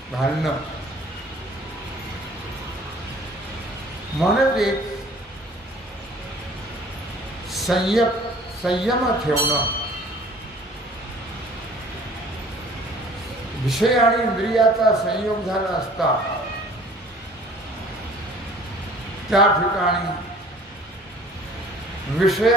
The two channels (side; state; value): both; normal; correlation 0.51